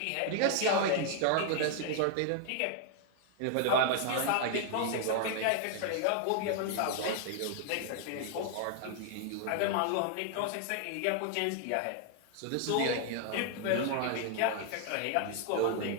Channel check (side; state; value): both; different; correlation 0.00